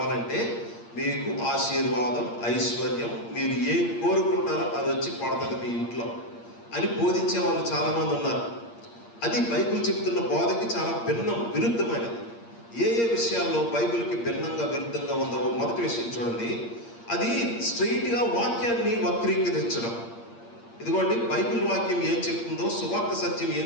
మీకు ఆశీర్వాదం, ఐశ్వర్యం, మీరు ఏం కోరుకుంటారో అది వచ్చి పడుతుంది మీ ఇంట్లో అని బోధించే వాళ్ళు చాలామంది ఉన్నారు. అది బైబిల్ చెప్తున్న బోధకి చాలా విరుద్ధమైనది. ఏ విషయాల్లో బైబిల్కి విరుద్ధంగా ఉందో మొదటి విషయం చూడండి. అది స్ట్రైట్గా వాక్యాన్ని వక్రీకరించడం. ఇదిగోండి, బైబిల్ వాక్యం ఏం చెప్తుందో, సువార్త సత్యం ఏం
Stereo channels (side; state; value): right; late; 8.6 ms